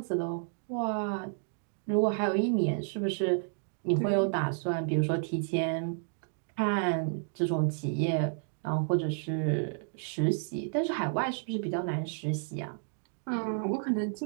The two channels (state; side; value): silent; left; digital silence